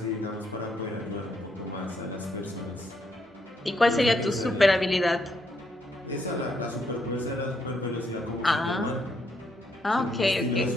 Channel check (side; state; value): both; normal; correlation 0.75